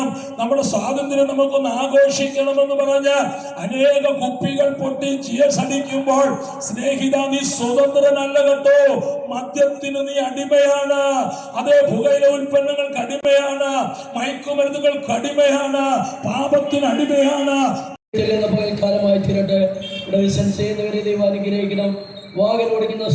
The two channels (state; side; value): identical; both; correlation 1.00